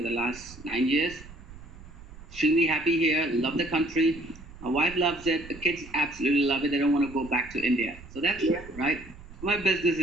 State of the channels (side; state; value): right; noise; rumble, 17 dB below the sound